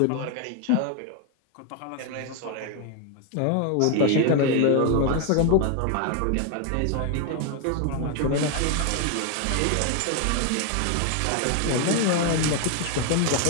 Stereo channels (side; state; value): both; different; correlation 0.01